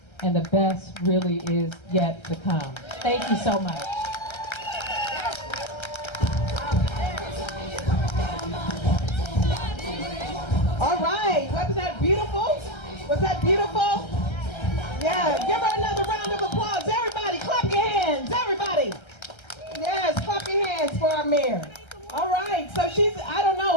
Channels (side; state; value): right; late; 1.3 ms